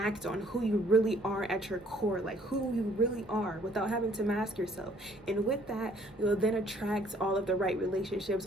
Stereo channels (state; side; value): normal; both; correlation 0.60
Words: on who you really are at your core, like who you really are, without having to mask yourself. And with that, you'll then attract all of the right relationships,